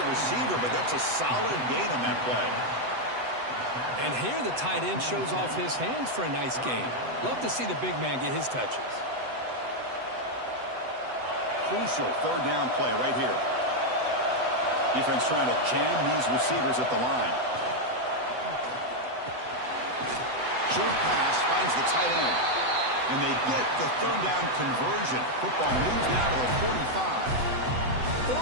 receiver, but that's a solid gain on that play. And here the tight end shows off his hands for a nice gain. Love to see the big man get his touches. Crucial 3rd down play right here. Defense trying to jam these receivers at the line. Short pass finds the tight end. And they get the 3rd down conversion. Football moves down to the 45.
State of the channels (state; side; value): late; left; 7.9 ms